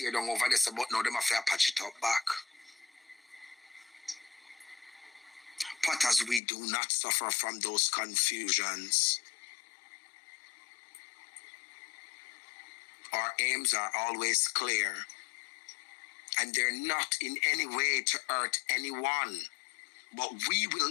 down over this, but now them have to patch it up back. But as we do not suffer from those confusions, our aims are always clear. And they're not in any way to hurt anyone. But we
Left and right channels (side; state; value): right; drops out; at 6.4 s